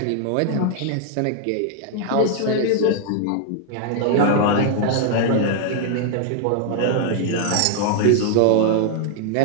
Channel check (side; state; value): both; different; correlation 0.00